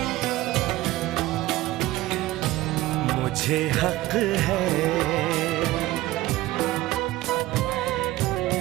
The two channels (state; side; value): quieter; left; 17.2 dB